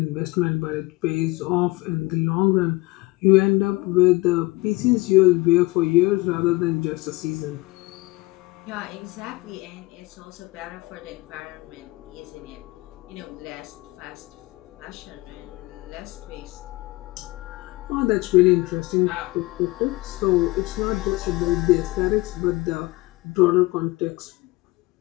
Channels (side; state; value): right; quieter; 21.9 dB